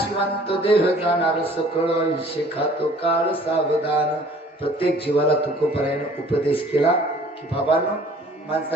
देह जाणार सकळ आयुष्य खातो काळ सावधान. प्रत्येक जीवाला तुकोबरायानं उपदेश केला की बाबांनो,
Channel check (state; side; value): normal; both; correlation 0.52